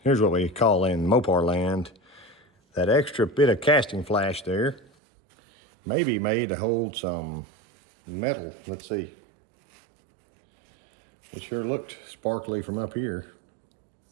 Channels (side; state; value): left; drops out; at 4.9 s